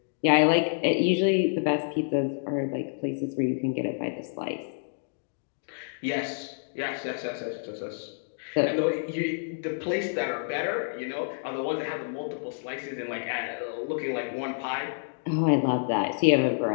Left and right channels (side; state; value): right; silent; digital silence